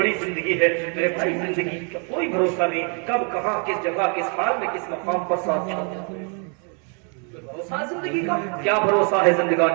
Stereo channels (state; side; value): quieter; left; 39.5 dB